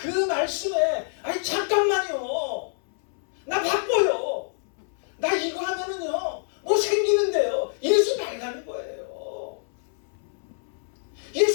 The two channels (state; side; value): silent; right; 61 dB below the other